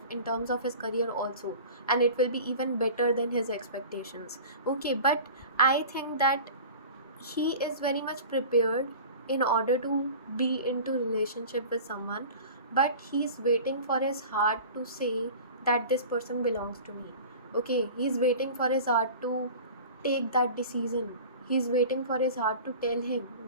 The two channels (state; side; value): inverted; both; correlation -0.38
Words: in terms of his career also, and it will be even better than his expectations. Okay, but I think that he is very much prepared in order to be into relationship with someone, but he's waiting for his heart to say that this person belongs to me. Okay, he's waiting for his heart to take that decision. He's waiting for his heart to tell him